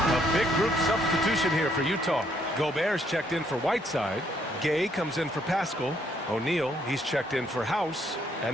Big group substitution here for Utah. Gobert's checked in for Whiteside. Gay comes in for Paschal. O'Neal, he's checked in for House.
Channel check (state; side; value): normal; both; correlation 0.70